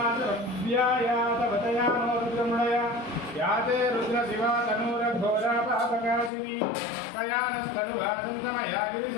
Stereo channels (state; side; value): drops out; right; at 6.3 s